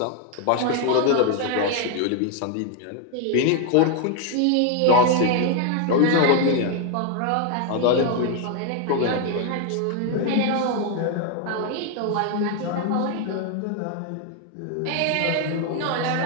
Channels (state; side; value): different; both; correlation 0.01